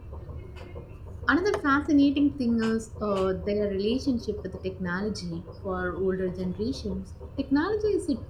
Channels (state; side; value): identical; both; correlation 1.00